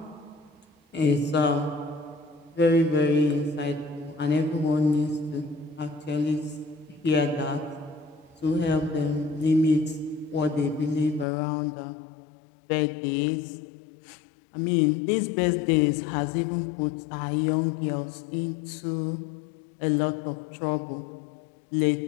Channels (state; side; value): drops out; right; at 11.2 s